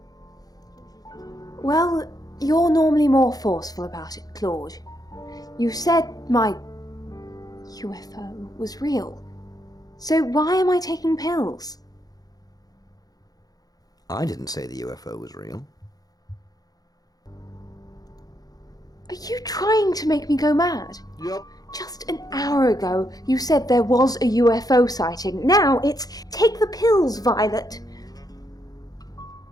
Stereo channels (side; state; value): right; late; 0.18 ms